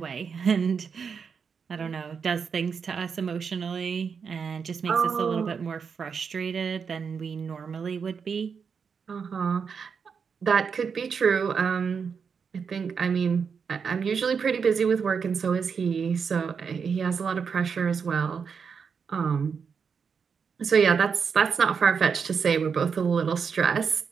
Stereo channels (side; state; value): left; quieter; 6.1 dB